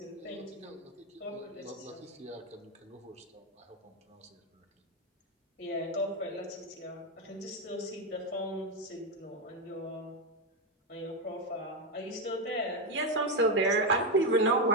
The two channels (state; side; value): normal; both; correlation 0.09